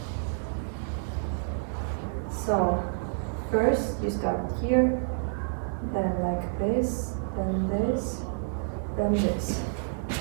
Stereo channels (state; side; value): silent; left; 59 dB below the other